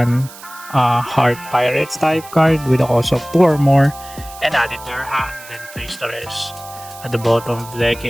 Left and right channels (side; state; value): right; noise; hiss, 18 dB below the sound